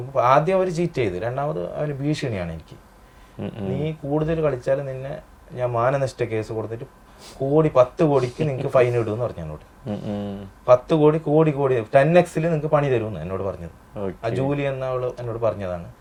ആദ്യം അവർ ചീറ്റ് ചെയ്ത്, രണ്ടാമത് അവന് ഭീഷണിയാണ് എനിക്ക്, നീ കൂടുതൽ കളിച്ചാൽ നിന്നെ ഞാൻ മാനനഷ്ട കേസ് കൊടുത്തിട്ട് 10 കോടിക്ക് നിങ്ങൾക്ക് ഫൈൻ ഇടുമെന്ന് പറഞ്ഞു എന്നോട്. 10 കോടി 10x നിങ്ങൾക്ക് പണി തരുമെന്ന് എന്നോട് പറഞ്ഞത്. ആ ജൂലി എന്ന അവള് എന്നോട് പറഞ്ഞതാണ്,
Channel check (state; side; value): identical; both; correlation 1.00